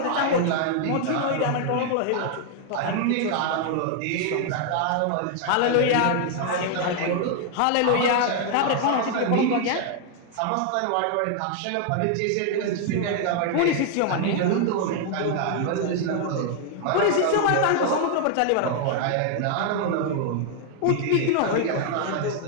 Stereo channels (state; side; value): different; both; correlation 0.00